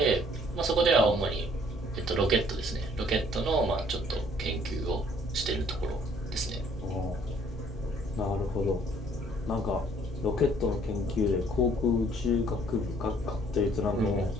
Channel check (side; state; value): both; normal; correlation 0.60